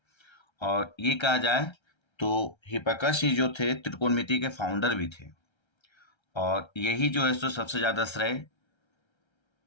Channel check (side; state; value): right; late; 1.3 ms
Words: और ये कहा जाए तो हिप्पारकस ही जो थे त्रिकोणमिति के फाउंडर भी थे। और यही जो है सो सबसे ज्यादा श्रेय